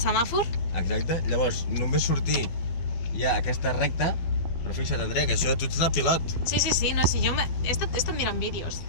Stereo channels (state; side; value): late; right; 12 ms